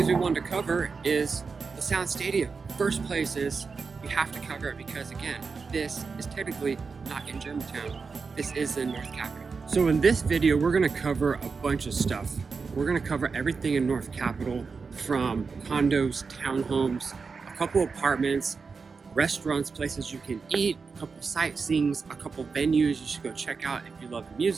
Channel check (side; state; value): left; quieter; 4.9 dB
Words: we wanted to cover is the Sound Stadium. First place is we have to cover it because, again, this is technically not in Germantown. This is in North Capitol. So in this video, we're gonna cover a bunch of stuff. We're gonna cover everything in North Capitol, from condos, townhomes, a couple apartments, restaurants, places you can eat, a couple sightseeings, a couple venues you should go check out if you love